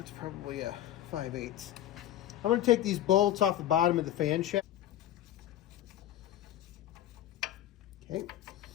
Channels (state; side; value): quieter; right; 12.3 dB